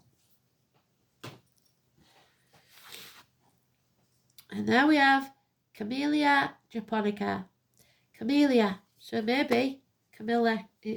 And there we have Camellia japonica. Camellia. So maybe Camilla,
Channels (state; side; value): identical; both; correlation 1.00